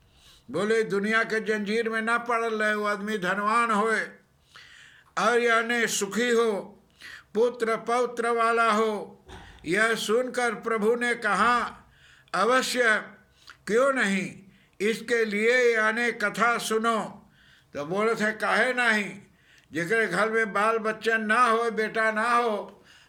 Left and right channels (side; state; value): both; identical; correlation 1.00